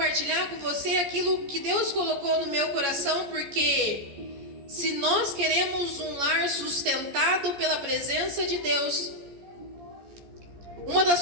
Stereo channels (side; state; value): left; late; 14 ms